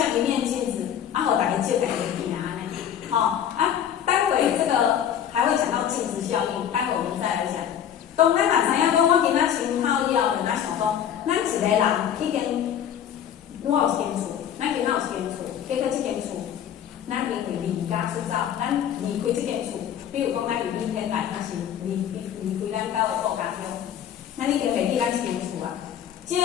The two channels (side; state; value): right; quieter; 9.5 dB